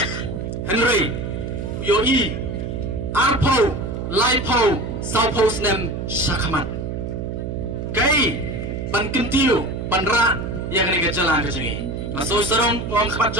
Henry yo i arpo laipo saupo snem shakaman kai ban kentiu ban ra ya kani gajala kajungi maso sarong ngom khabat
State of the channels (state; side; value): noise; right; hum, 5 dB below the sound